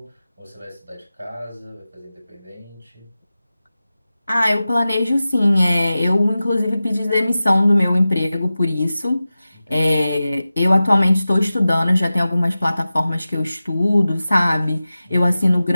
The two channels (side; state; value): both; inverted; correlation -0.95